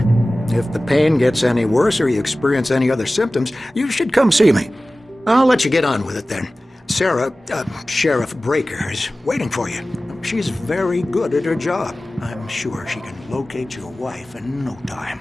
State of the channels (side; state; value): both; normal; correlation 0.97